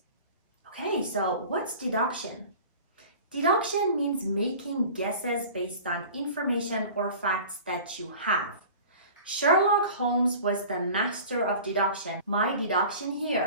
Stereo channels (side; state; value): both; inverted; correlation -0.41